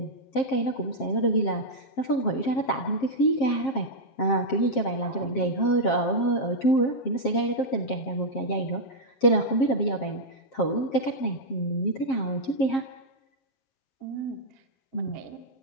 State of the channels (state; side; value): late; right; 7.5 ms